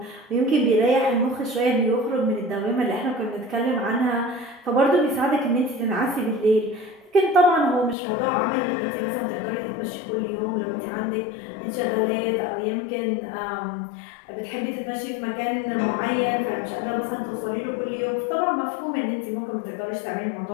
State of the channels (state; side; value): drops out; right; at 8.0 s